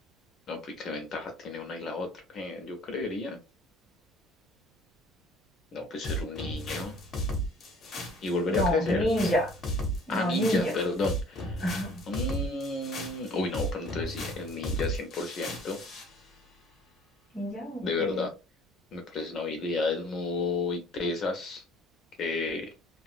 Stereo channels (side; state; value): both; normal; correlation 0.52